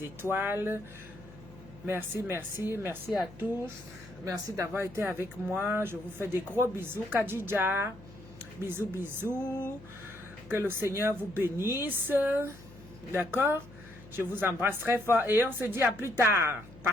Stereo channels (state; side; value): noise; left; hum, 19 dB below the sound